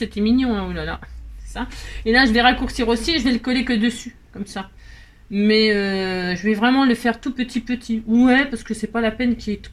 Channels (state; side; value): identical; both; correlation 1.00